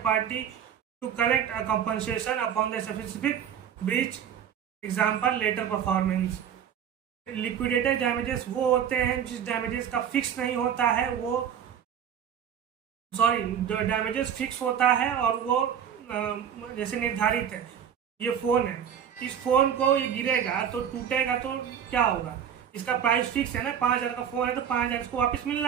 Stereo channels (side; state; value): left; quieter; 8.7 dB